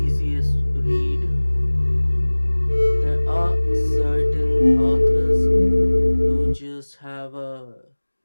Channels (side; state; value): both; inverted; correlation -1.00